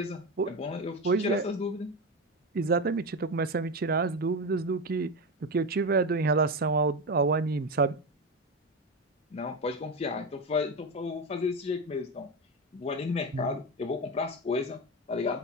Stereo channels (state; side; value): normal; both; correlation 0.18